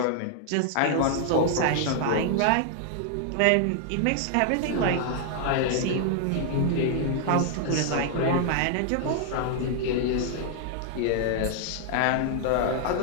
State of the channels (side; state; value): both; different; correlation -0.01